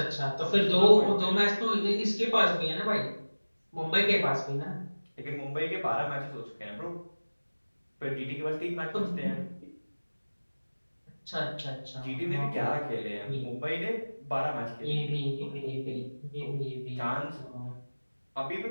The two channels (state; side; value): inverted; both; correlation -1.00